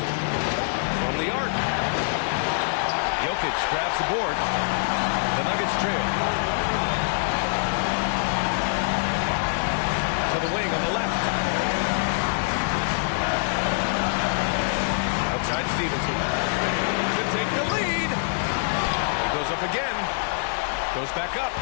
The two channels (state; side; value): silent; right; 62 dB below the other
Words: From the arc. Jokic grabs the board. The Nuggets trail. To the wing on the left. Outside Stevenson. To take the lead. He goes up again. Goes back up.